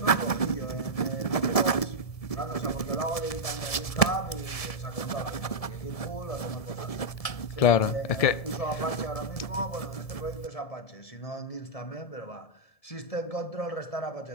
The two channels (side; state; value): right; late; 1.7 ms